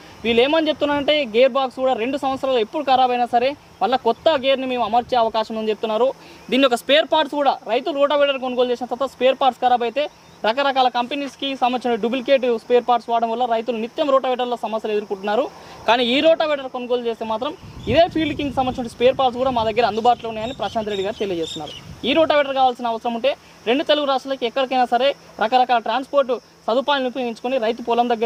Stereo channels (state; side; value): identical; both; correlation 1.00